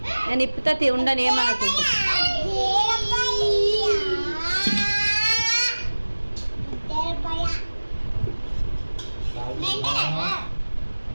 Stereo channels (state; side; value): inverted; both; correlation -1.00